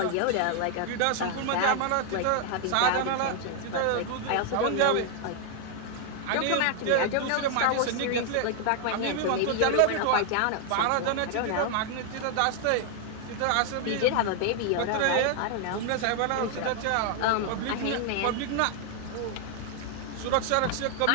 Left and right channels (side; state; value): both; different; correlation 0.00